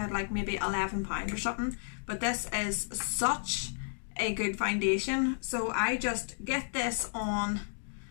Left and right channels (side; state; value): right; silent; digital silence